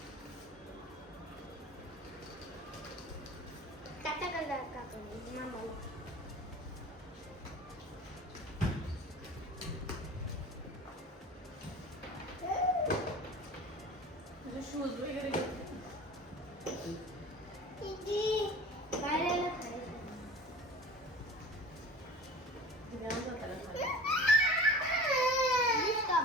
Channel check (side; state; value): both; normal; correlation 0.39